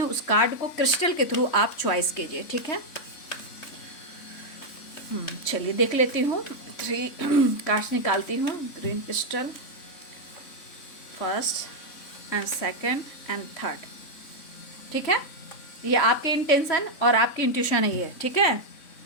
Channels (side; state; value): right; late; 3.6 ms